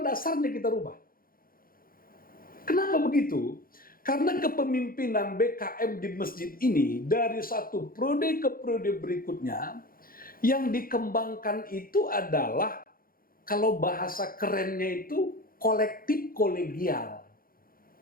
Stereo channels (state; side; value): late; right; 0.42 ms